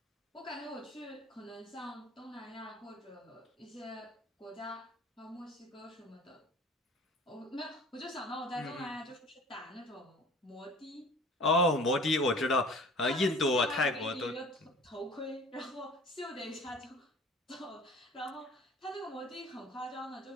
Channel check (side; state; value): both; normal; correlation 0.45